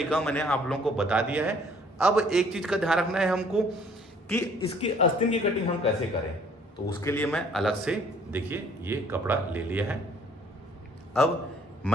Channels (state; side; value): normal; both; correlation 0.59